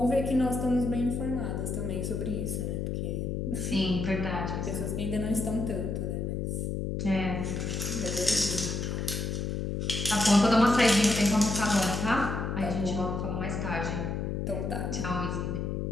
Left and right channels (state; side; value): noise; left; hum, 2 dB below the sound